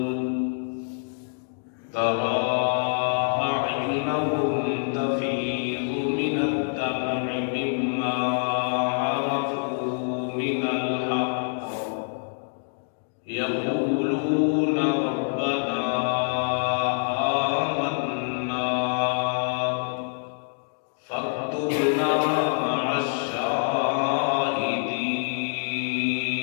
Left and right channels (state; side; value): silent; right; digital silence